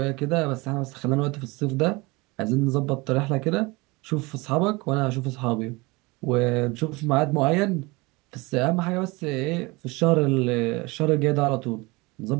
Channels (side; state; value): left; quieter; 24.6 dB